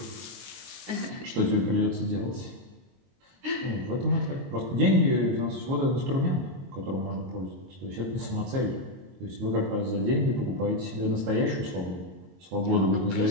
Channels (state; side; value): late; left; 22 ms